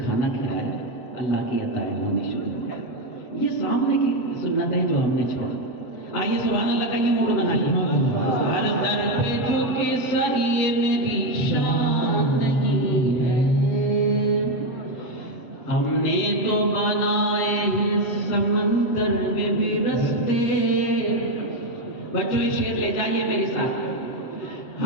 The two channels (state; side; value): late; right; 7.9 ms